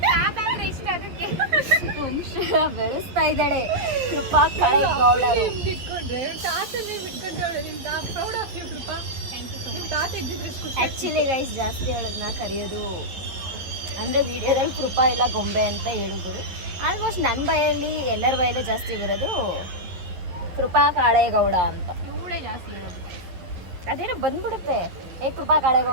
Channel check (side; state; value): left; late; 12 ms